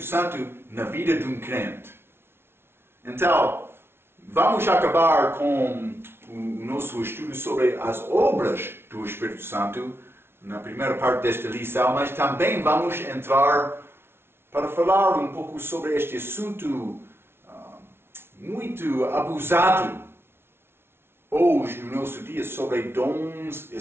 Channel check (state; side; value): late; left; 0.12 ms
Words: na vida de um crente. Então, vamos acabar com o nosso estudo sobre as obras do Espírito Santo na primeira parte desta lição, mas também vamos entrar para falar um pouco sobre este assunto muito abusado hoje no nosso dia, sobre dons